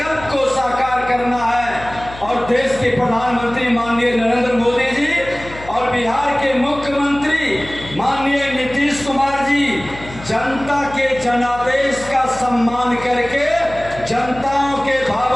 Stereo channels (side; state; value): left; noise; hum, 16 dB below the sound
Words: को साकार करना है। और देश के प्रधानमंत्री माननीय नरेंद्र मोदी जी और बिहार के मुख्यमंत्री माननीय नीतीश कुमार जी जनता के जनादेश का सम्मान करके जनताओं के